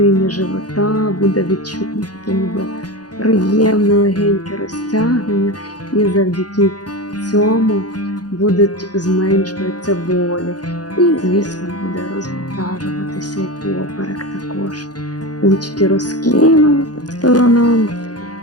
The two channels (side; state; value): right; late; 0.69 ms